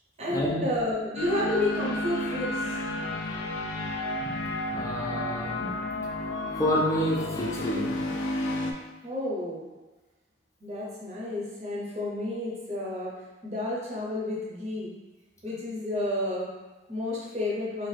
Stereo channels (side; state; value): both; normal; correlation 0.39